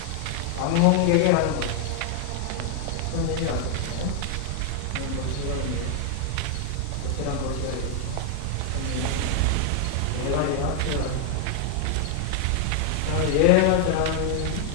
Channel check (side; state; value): both; different; correlation 0.00